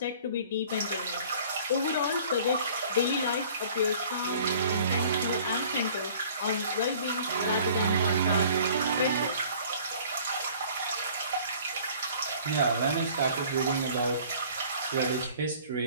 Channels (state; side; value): inverted; both; correlation -0.51